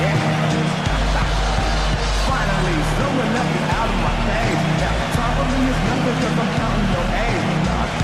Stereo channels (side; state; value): both; identical; correlation 1.00